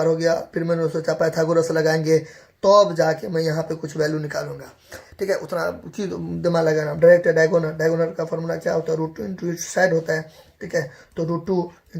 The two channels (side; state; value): both; identical; correlation 1.00